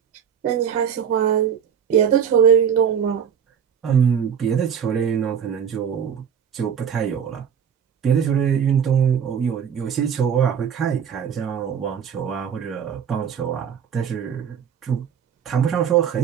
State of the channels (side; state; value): left; quieter; 7.9 dB